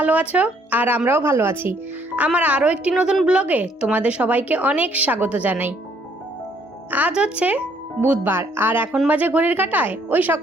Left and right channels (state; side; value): normal; both; correlation 0.66